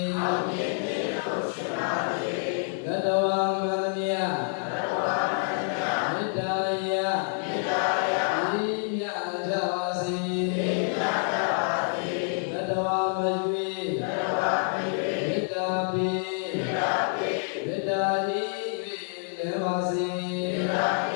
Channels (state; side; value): silent; right; 60 dB below the other